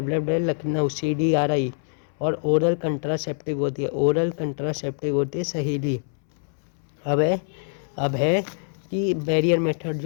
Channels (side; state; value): right; silent; 62 dB below the other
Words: लखनऊ CDRI, और ओरल कंट्रासेप्टिव होती है, ओरल कंट्रासेप्टिव होती है सहेली। अब है कि बैरियर मेथड